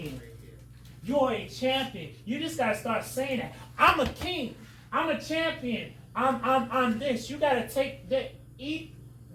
You are a champion. You just gotta start saying that. I'm a king. I'm a champion. I'm this. You gotta take that.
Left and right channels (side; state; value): both; identical; correlation 1.00